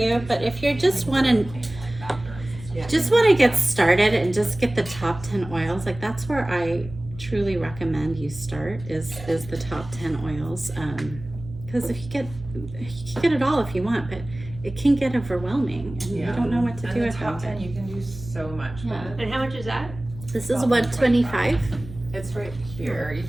But if you just want to get started and just get the top 10 oils, like that's where I truly recommend you start is the top 10 oils. Because if you can get it all if you want, but it can get overwhelming and you don't know what to do the with top it. 10, you can do so much with Yeah. it. And how much is that? This is $125. It's right here. You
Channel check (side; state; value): right; noise; hum, 14 dB below the sound